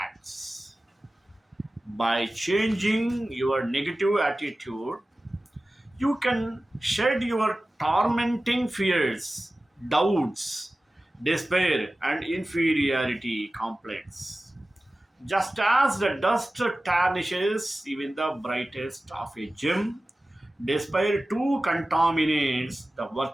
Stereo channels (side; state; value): both; normal; correlation 0.96